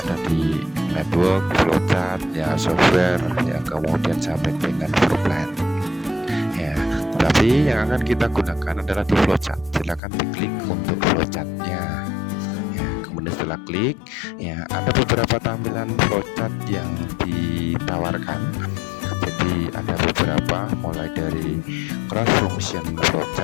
di network, flowchart, ya, software, ya, kemudian sampai dengan floor plan. Ya, tetapi yang akan kita gunakan adalah di flowchart. Silakan diklik untuk flowchartnya. Ya, kemudian setelah klik, ya, ada beberapa tampilan flowchart yang ditawarkan. Jadi ada beberapa, mulai dari cross function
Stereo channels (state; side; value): drops out; right; at 10.0 s